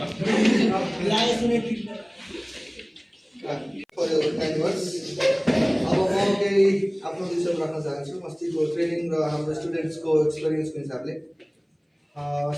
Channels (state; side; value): identical; both; correlation 1.00